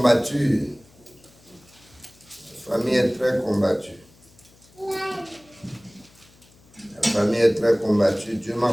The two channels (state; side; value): noise; left; hum, 28 dB below the sound